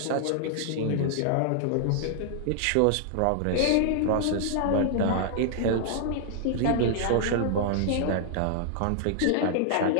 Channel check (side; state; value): both; different; correlation -0.01